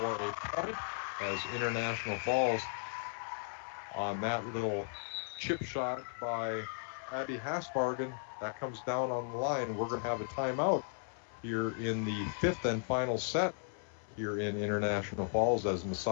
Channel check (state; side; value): silent; right; 54 dB below the other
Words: point as International Falls on that little chip shot by Abby Hasbargen. That comes down on the line. We're going to have a timeout here in the fifth and final set here in International Falls as